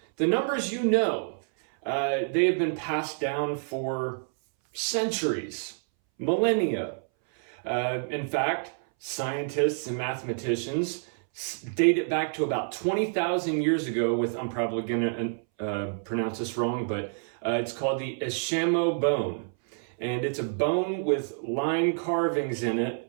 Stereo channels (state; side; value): silent; left; 59 dB below the other